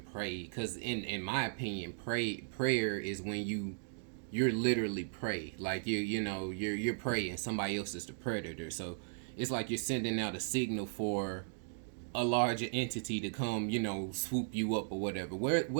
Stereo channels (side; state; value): left; silent; digital silence